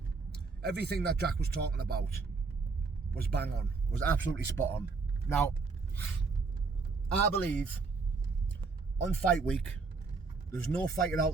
everything that Jack was talking about was bang on, was absolutely spot on. Now, I believe on fight week, there's no fighter out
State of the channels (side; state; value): left; quieter; 4.4 dB